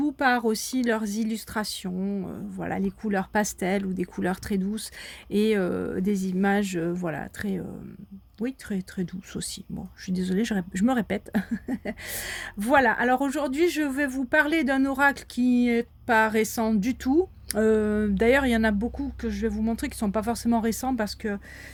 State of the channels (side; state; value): both; identical; correlation 1.00